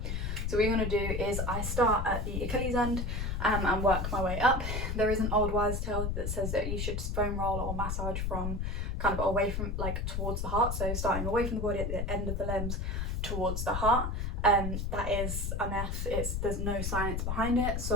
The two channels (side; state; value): left; noise; rumble, 1 dB below the sound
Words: So what you're going to do is I start at the Achilles end and work my way up. There is an old wives' tale that says that you should foam roll or massage from kind of away from, like, towards the heart, so starting away from the body at the end of the limbs towards the heart. That is a myth. There's no science behind it,